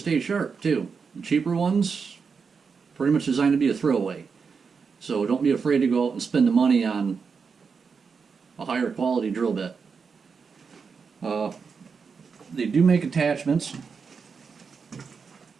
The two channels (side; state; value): left; quieter; 5.6 dB